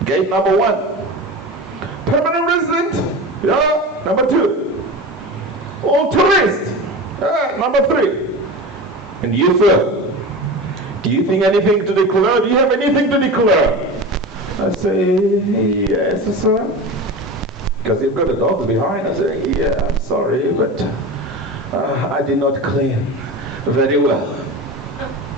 gate number 1. Permanent resident, number 2. All tourist, number 3. And you, sir, do you think anything to declare? Do you have anything to declare? I say, yes, sir. Because you've got the dogs behind. I say, yeah, I'm sorry, but I did not clean very well.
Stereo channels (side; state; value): both; normal; correlation 0.29